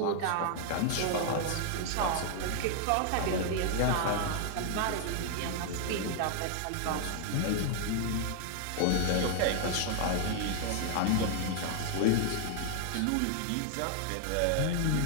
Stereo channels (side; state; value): both; different; correlation 0.00